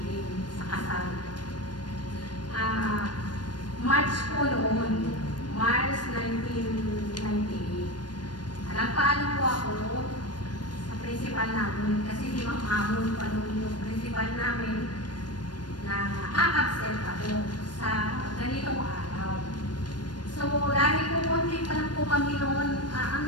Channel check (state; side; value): late; right; 0.70 ms